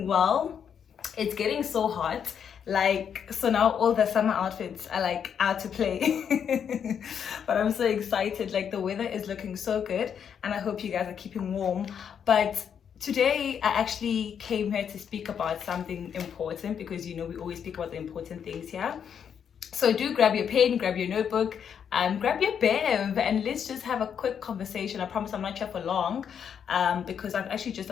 well. It's getting so hot, so now all the summer outfits are like out to play. But I'm so excited. Like, the weather is looking so good, and I hope you guys are keeping warm. But today I actually came here to speak about something important, because we always speak about the important things here. So do grab your pen, grab your notebook, grab your bev, and let's just have a quick conversation. I promise I'm not here for long, because I'm actually just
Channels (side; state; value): right; quieter; 7.8 dB